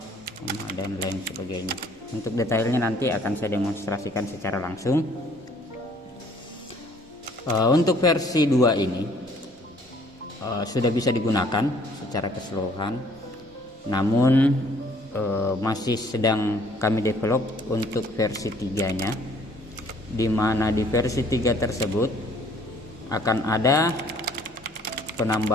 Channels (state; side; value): normal; both; correlation 0.59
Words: dan lain sebagainya. Untuk detailnya nanti akan saya demonstrasikan secara langsung. Untuk versi 2 ini sudah bisa digunakan secara keseluruhan, namun masih sedang kami develop untuk versi 3-nya, di mana di versi 3 tersebut akan ada